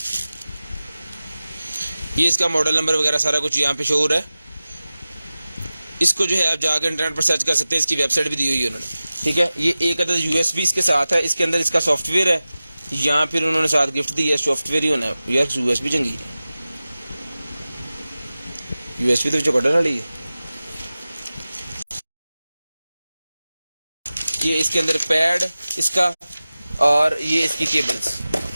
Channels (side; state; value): both; inverted; correlation -0.96